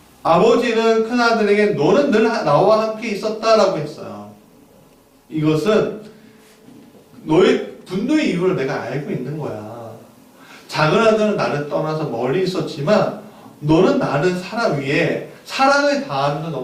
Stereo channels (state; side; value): identical; both; correlation 1.00